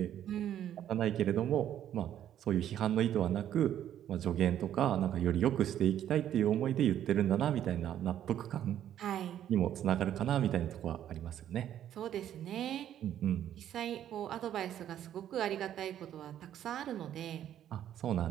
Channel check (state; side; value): quieter; left; 10.9 dB